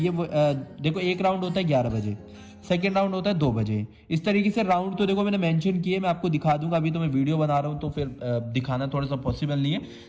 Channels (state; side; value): identical; both; correlation 1.00